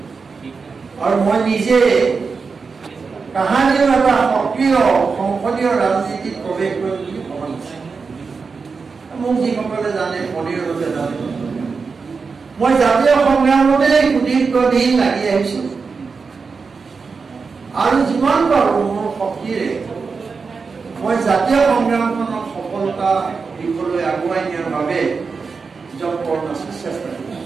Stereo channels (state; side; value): quieter; left; 4.9 dB